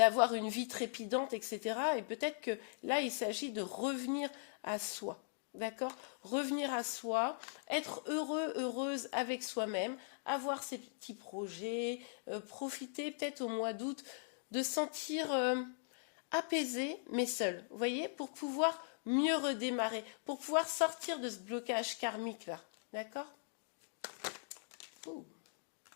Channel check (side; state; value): right; silent; digital silence